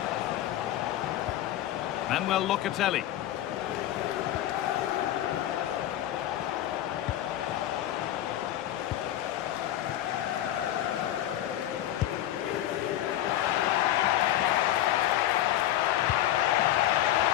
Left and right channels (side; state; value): right; quieter; 13.0 dB